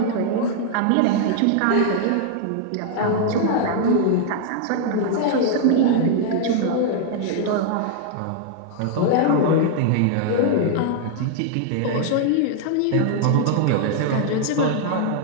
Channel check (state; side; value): different; both; correlation 0.00